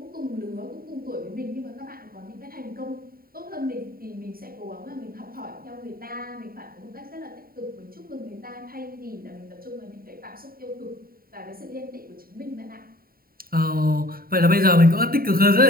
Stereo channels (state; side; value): late; left; 0.43 ms